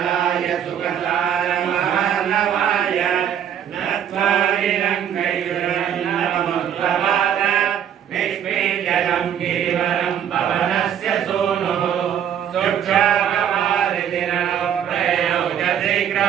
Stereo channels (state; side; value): quieter; left; 9.3 dB